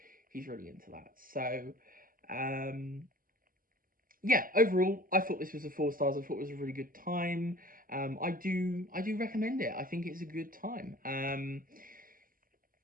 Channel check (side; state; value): left; late; 0.41 ms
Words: he's really into that. So yeah, overall, I thought this was a 4 stars. I thought it was a really good time. I do recommend it. I think it's a good time.